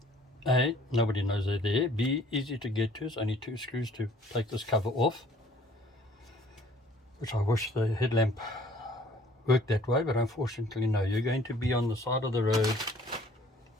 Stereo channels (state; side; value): normal; both; correlation 0.56